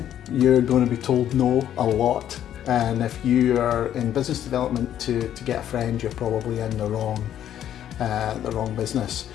You're going to be told no a lot, and if you are in business development to get a friend, you're probably in the wrong business.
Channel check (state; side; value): quieter; right; 10.8 dB